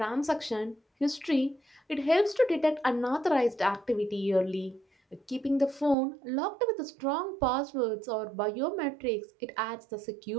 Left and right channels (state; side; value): drops out; left; at 6.0 s